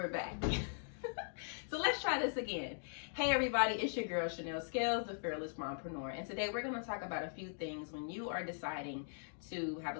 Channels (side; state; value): right; silent; digital silence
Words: back. So let's try this again. Hey everybody, it's your girl Chanel Scales, the fearless mompreneur, and today we're going to talk about a few things when you are deciding to have